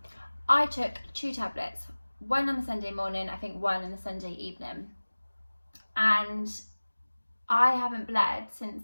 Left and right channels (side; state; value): both; inverted; correlation -1.00